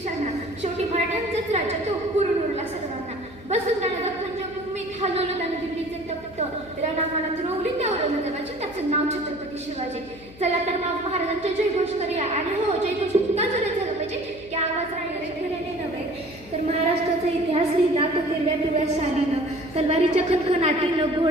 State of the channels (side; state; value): left; noise; hum, 20 dB below the sound